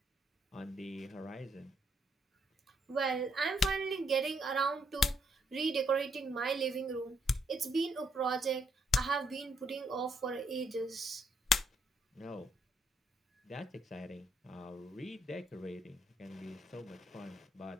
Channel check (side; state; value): both; normal; correlation 0.74